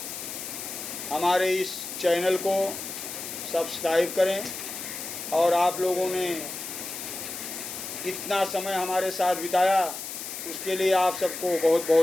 हमारे इस चैनल को सब्सक्राइब करें, और आप लोगों ने इतना समय हमारे साथ बिताया उसके लिए आप सबको बहुत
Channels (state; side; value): noise; left; hiss, 8 dB below the sound